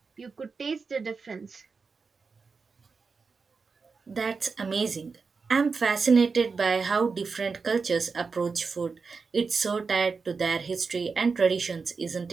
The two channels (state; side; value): quieter; left; 4.8 dB